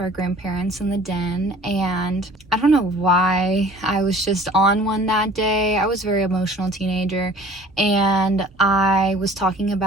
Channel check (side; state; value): both; normal; correlation 0.48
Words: our grandparents in the den. And I don't know why I was just on one that day. I was a very emotional teenager, and I was talking